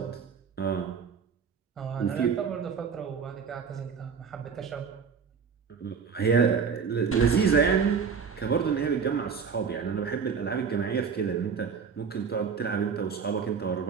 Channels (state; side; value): quieter; left; 6.2 dB